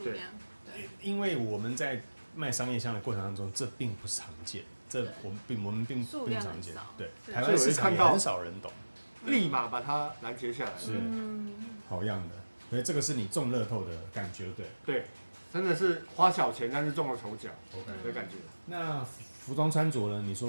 量。因为我们在卖商业香的过程当中，这并不常见。这我们并不常见，对，台湾市场也很少人懂，立马把它拦截下来，是好样的，所以这个是你中乐透的感觉，对，真的是花小钱但是中了头奖 ，OK 的感觉。那服装穿着呢？你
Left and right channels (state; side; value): inverted; both; correlation -1.00